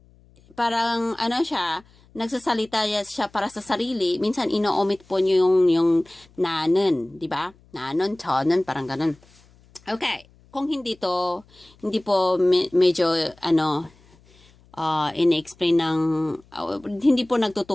parang, siya, nagsasalita siya para sa sarili, minsan ino-omit po niyo yung nanen, di ba? Nanon, 저는, parang ganun. Okay, kung hindi po medyo, in-explain ng, hindi po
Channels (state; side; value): noise; left; hum, 29 dB below the sound